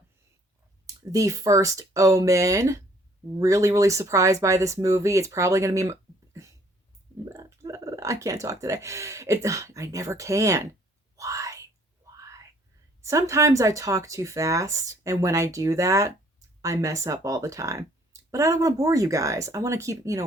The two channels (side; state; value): both; normal; correlation 0.60